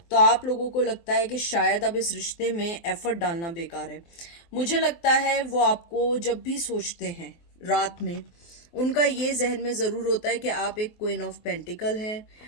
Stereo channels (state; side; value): late; right; 24 ms